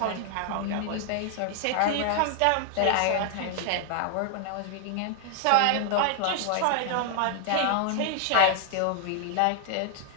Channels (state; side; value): different; both; correlation 0.00